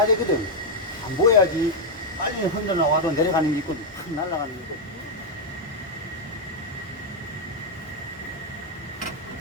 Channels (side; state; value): both; normal; correlation 0.00